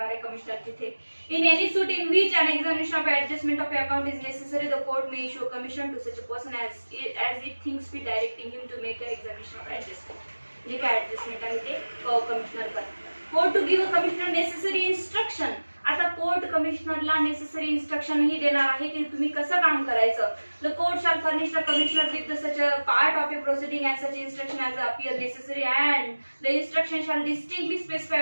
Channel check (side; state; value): both; inverted; correlation -1.00